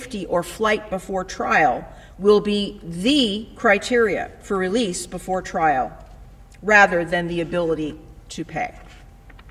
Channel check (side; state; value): both; identical; correlation 1.00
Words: or flight before trial will be the criteria for release before trial, rather than the ability to pay.